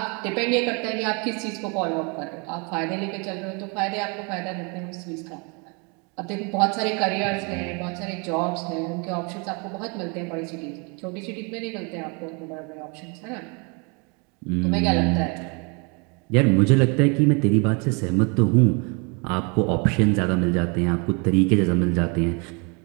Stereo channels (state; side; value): quieter; left; 32.6 dB